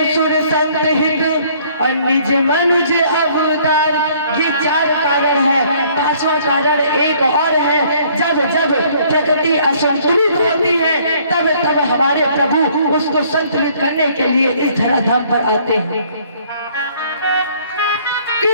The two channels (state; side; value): inverted; both; correlation -0.60